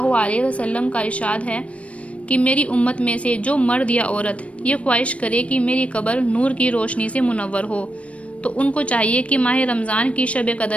अलैहि वसल्लम का इरशाद है कि मेरी उम्मत में से जो मर्द या औरत ये ख्वाहिश करे कि मेरी कब्र नूर की रोशनी से मुनव्वर हो, तो उनको चाहिए कि माह रमज़ान की शब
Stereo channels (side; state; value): right; late; 0.063 ms